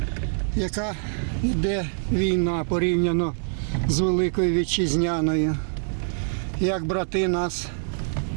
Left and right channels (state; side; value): silent; left; digital silence